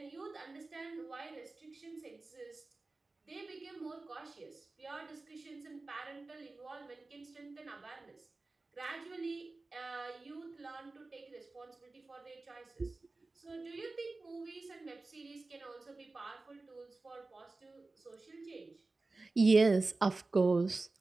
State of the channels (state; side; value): quieter; left; 3.4 dB